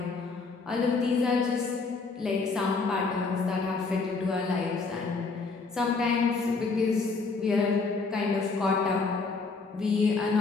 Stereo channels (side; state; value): right; quieter; 4.2 dB